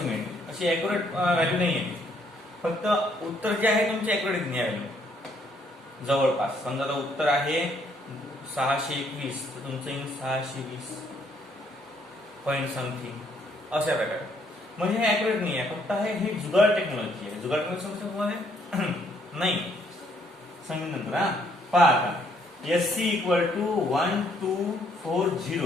अशी ॲक्युरेट व्हॅल्यू नाही आहे फक्त उत्तर जे आहे तुमचे ॲक्युरेट नाही आहे जवळपास समजा आता उत्तर आहे 621 तर तुमचं येईल 620 पॉइंट समथिंग अशा प्रकारे म्हणजे हे ॲक्युरेट नाही आहे फक्त हे जुगाड टेक्नॉलॉजी आहे जुगाड टेक्नॉलॉजी समजतं तुम्हाला नाही सांगेन नंतर हा पहा आता एससी इक्वल टू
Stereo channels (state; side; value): normal; both; correlation 0.68